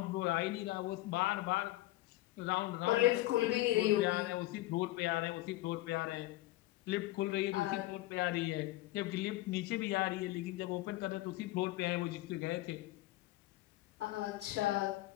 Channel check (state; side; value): quieter; right; 17.4 dB